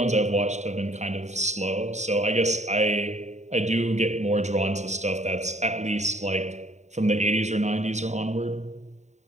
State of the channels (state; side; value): late; left; 0.34 ms